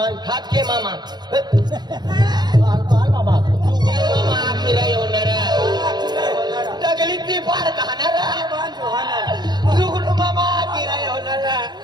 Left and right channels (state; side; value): late; left; 0.20 ms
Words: हात के मामा बाल मामा मामा फिरा येणार दगलीत ती पार खाणार जुगुड मामा फिरा येणार